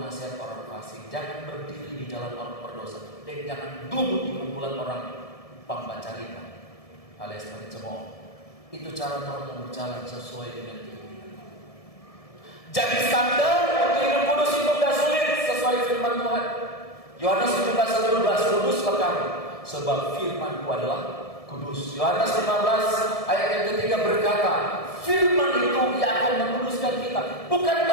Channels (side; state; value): right; late; 1.7 ms